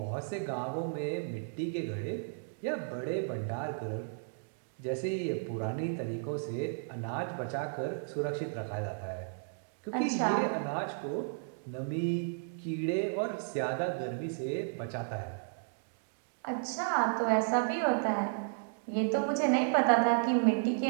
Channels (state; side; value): silent; left; digital silence